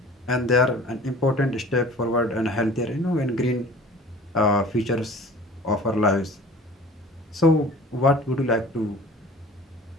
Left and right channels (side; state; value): both; normal; correlation 0.45